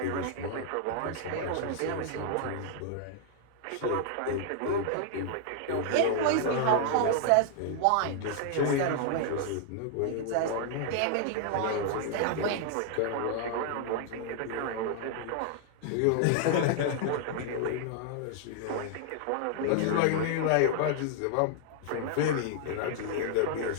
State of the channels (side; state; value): both; different; correlation 0.00